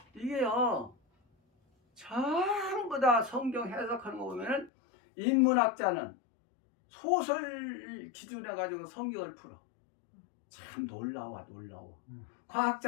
이게요 전부 다 성경 해석하는 거 보면은 인문학자는 소설 기준해 가지고 성경을 풀어. 참 놀라워.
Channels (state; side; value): drops out; right; at 4.7 s